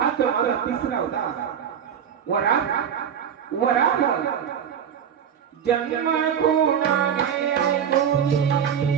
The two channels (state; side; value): quieter; left; 8.3 dB